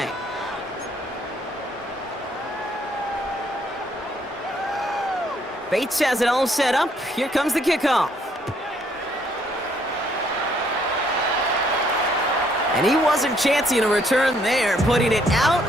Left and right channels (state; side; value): normal; both; correlation 0.67